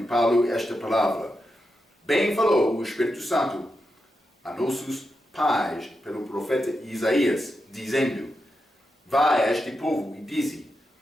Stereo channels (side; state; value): both; normal; correlation 0.87